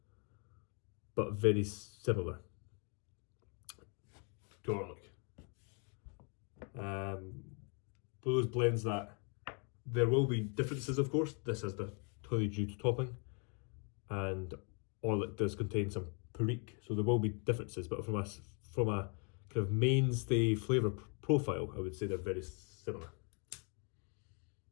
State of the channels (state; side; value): quieter; right; 37.2 dB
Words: but very similar. garlic. For those blends that there will be differences, of course. This has the honeydew topping, and all it does contain some perique, so there will be differences. But from a kind of mainstay flavour profile, I would say they're very similar.